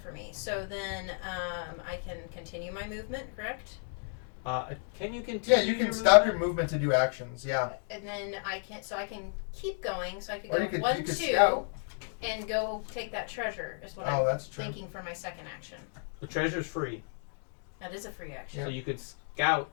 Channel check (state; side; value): silent; right; 56 dB below the other